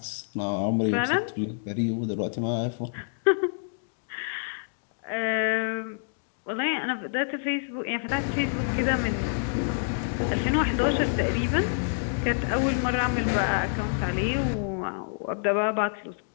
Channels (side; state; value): right; silent; digital silence